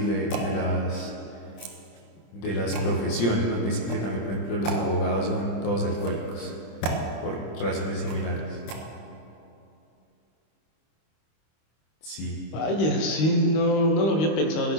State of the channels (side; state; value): right; late; 25 ms